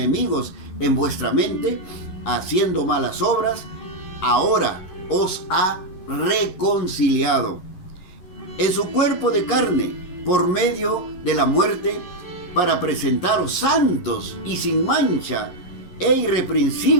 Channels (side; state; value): right; late; 11 ms